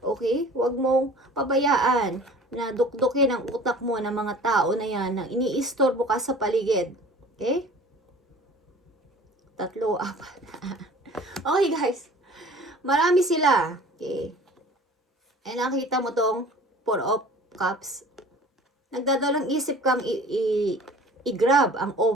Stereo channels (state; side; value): normal; both; correlation 0.46